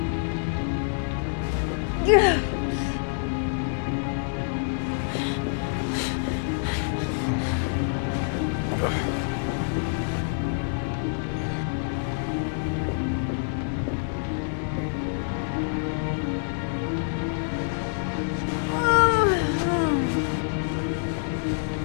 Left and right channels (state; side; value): silent; right; digital silence